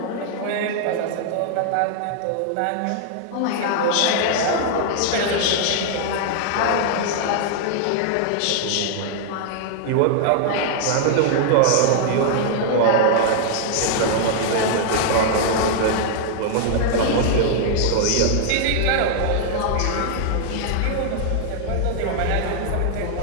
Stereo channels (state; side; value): different; both; correlation -0.01